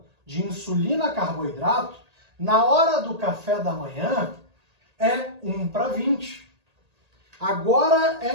de insulina-carboidrato, na hora do café da manhã, é 1:20. Agora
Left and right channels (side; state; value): left; late; 1.8 ms